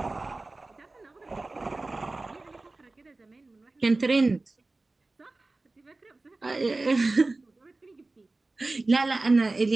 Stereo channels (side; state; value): left; quieter; 3.2 dB